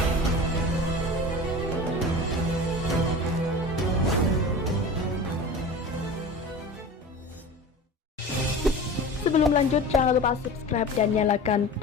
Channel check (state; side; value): normal; both; correlation 0.34